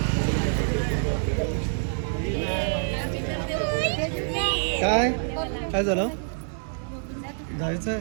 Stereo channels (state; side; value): silent; left; 59 dB below the other